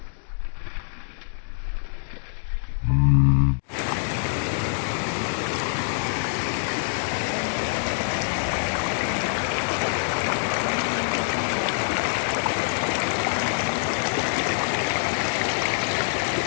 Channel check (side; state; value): right; silent; digital silence